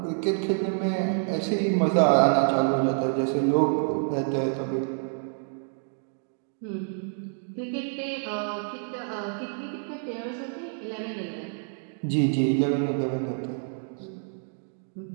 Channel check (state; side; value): silent; left; digital silence